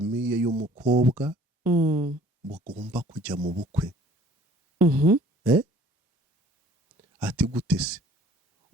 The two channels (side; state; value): both; normal; correlation 0.54